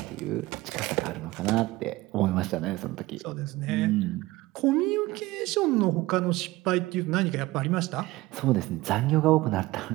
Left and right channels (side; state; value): left; quieter; 19.1 dB